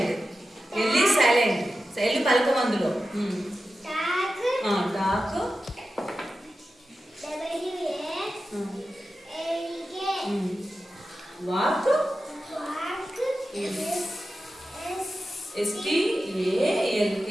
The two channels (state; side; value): normal; both; correlation 0.92